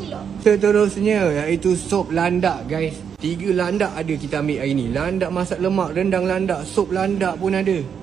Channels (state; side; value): quieter; left; 7.5 dB